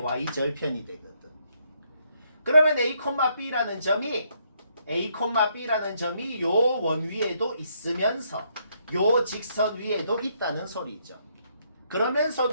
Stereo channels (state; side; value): inverted; both; correlation -0.73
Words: 되거든. 그러면 A,B라는 점이 요 원 위에도 있으면서 요 직선 위에도 있다는 소리죠.